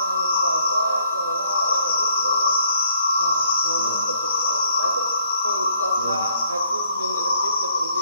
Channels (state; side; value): inverted; both; correlation -0.67